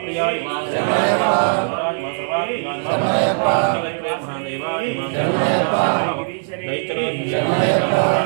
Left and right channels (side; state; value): left; silent; digital silence